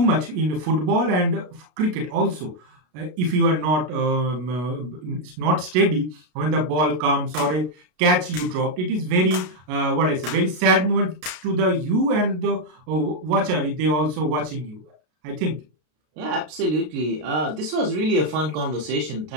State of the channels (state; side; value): late; left; 33 ms